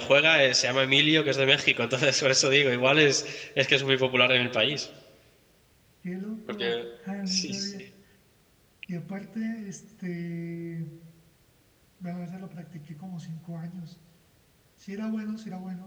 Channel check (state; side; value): identical; both; correlation 1.00